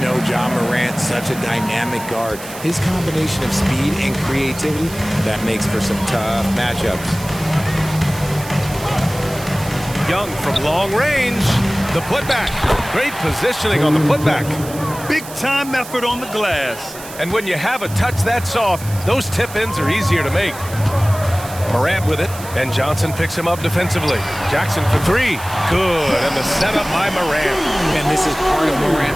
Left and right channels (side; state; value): right; noise; hiss, 14 dB below the sound